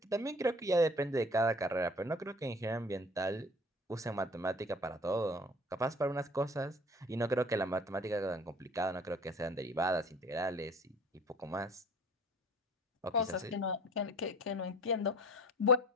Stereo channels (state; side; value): normal; both; correlation 0.46